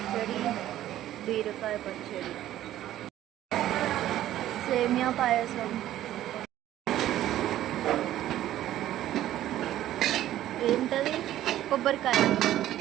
బీరకాయ పచ్చడి సేమియా పాయసం ఏంటది కొబ్బరికాయ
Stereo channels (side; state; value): left; quieter; 13.1 dB